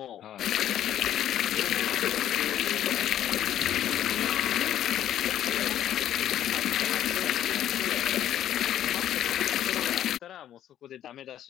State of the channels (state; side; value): quieter; right; 11.3 dB